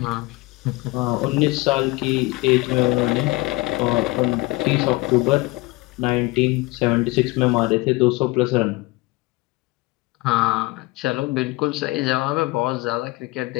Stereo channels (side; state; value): right; quieter; 22.2 dB